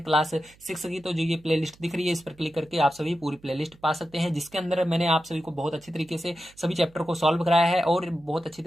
क्लास 6 की, तो जो ये प्लेलिस्ट दिख रही है इस पर क्लिक करके आप सभी पूरी प्लेलिस्ट पा सकते हैं, जिसके अंदर मैंने आप सभी को बहुत अच्छी तरीके से सभी चैप्टर को सॉल्व कराया है और बहुत अच्छी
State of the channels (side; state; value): right; noise; hum, 28 dB below the sound